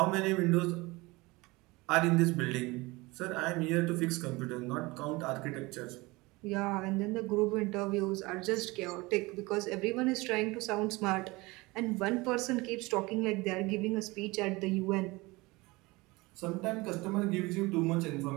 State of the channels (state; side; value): quieter; left; 22.9 dB